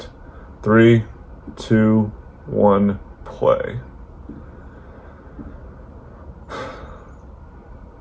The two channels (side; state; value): both; identical; correlation 1.00